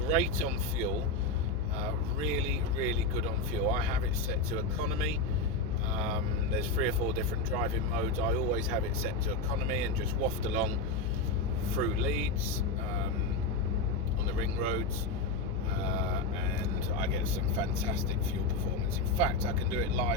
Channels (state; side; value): noise; left; hum, 3 dB below the sound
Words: on fuel. Really good on fuel. I have it set to economy. There's 3 or 4 different driving modes. I always have it set to economy and just waft along through Leeds on the ring roads, and I get some fantastic fuel performance. In fact, I can do it